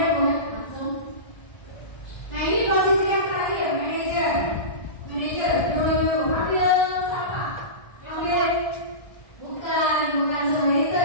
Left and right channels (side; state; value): right; late; 1.3 ms